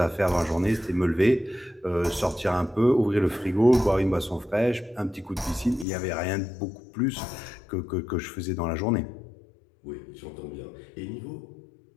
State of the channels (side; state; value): right; drops out; at 5.9 s